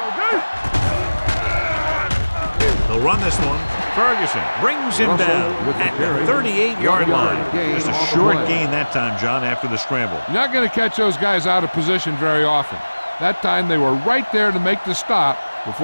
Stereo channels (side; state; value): both; inverted; correlation -1.00